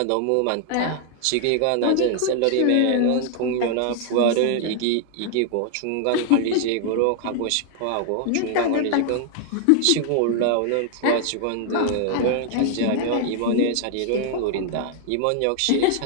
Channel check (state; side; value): different; both; correlation 0.00